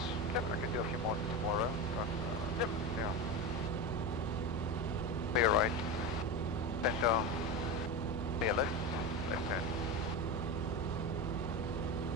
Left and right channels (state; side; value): noise; right; hum, 6 dB below the sound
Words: Yep. I can do a few more tomorrow, but Yep. yeah. Clear right. Center. Clear left. Left hand.